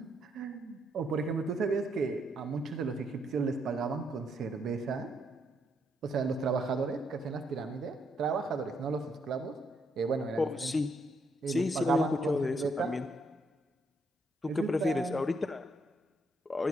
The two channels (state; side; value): normal; both; correlation 0.75